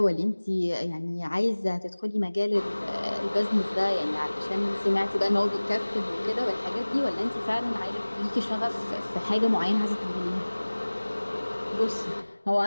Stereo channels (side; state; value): both; inverted; correlation -1.00